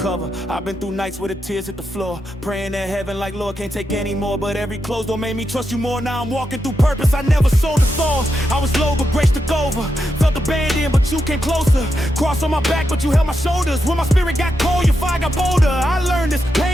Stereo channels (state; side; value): normal; both; correlation 0.85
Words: I've been through nights where the tears hit the floor, praying at heaven like, Lord, can't take any more. But every closed door made me trust you more. Now I'm walking through purpose. I never sold the thorns. I was low, but grace took over. Felt abandoned, but you came closer. Cross on my back, but you held my shoulders. When my spirit got cold, your fire got bolder. I learned this